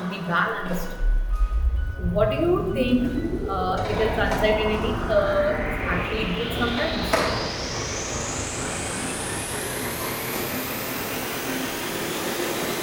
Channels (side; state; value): both; identical; correlation 1.00